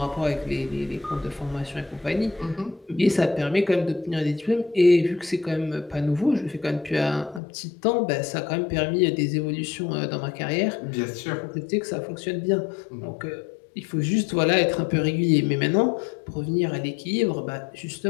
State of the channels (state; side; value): drops out; right; at 7.4 s